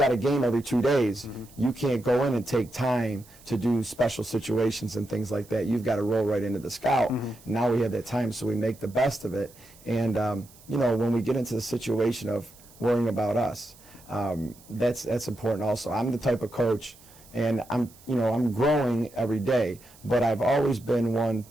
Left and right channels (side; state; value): right; noise; hiss, 24 dB below the sound